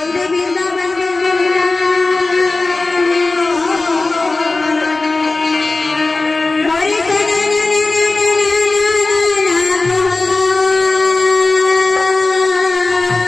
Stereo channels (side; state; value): right; quieter; 3.4 dB